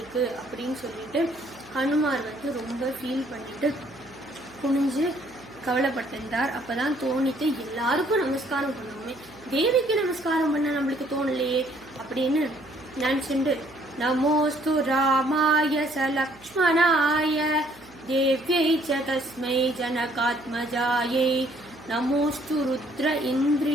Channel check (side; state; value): right; noise; hum, 26 dB below the sound